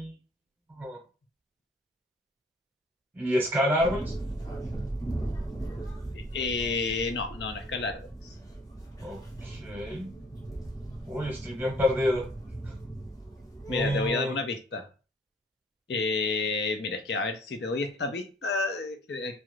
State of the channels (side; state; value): both; normal; correlation 0.56